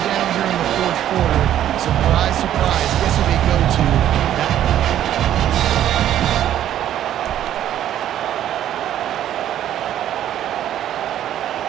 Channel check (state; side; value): quieter; left; 11.4 dB